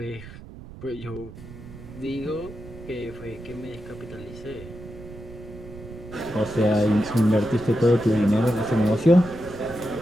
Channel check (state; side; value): noise; right; rumble, 15 dB below the sound